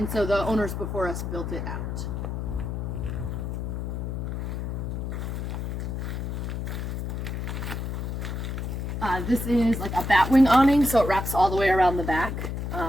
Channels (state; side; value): noise; left; hum, 3 dB below the sound